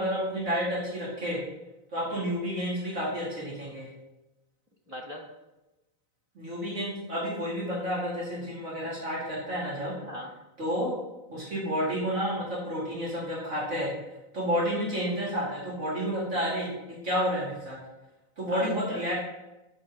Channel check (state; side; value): late; left; 4.0 ms